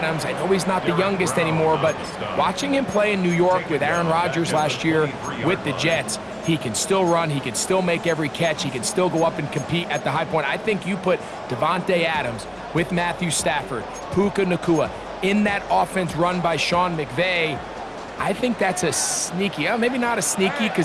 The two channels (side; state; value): both; identical; correlation 1.00